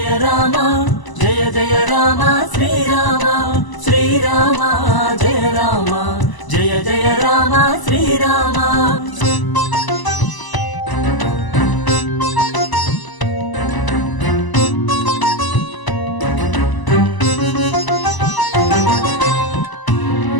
రామ జయ జయ రామ శ్రీరామ శ్రీరామ జయ రామ జయ జయ రామ శ్రీరామ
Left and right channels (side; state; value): right; late; 1.0 ms